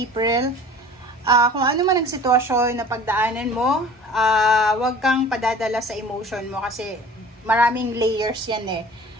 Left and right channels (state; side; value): normal; both; correlation 0.44